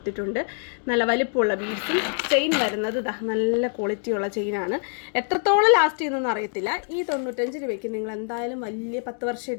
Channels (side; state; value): right; silent; 59 dB below the other